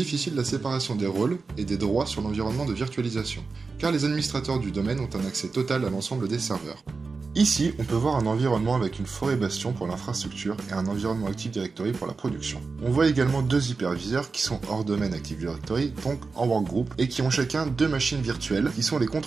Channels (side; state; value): left; quieter; 4.3 dB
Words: la séparation des rôles et des droits sur l'environnement de virtualisation, car les administrateurs du domaine ont un accès total à l'ensemble des serveurs. Ici, on peut voir un environnement avec une forêt bastion pour l'infrastructure et un environnement Active Directory pour la production. On voit également deux hyperviseurs qui sont hors domaine Active Directory, donc en workgroup, et qui ont chacun deux machines virtuelles qui sont les